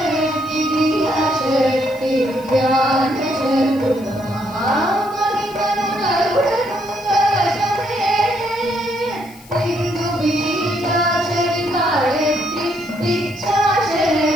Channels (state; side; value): noise; left; hiss, 23 dB below the sound